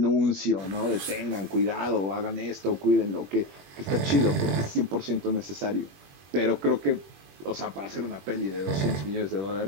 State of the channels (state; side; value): late; left; 21 ms